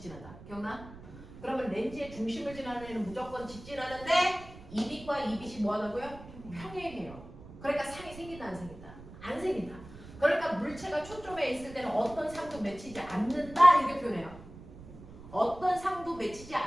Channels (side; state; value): right; noise; rumble, 16 dB below the sound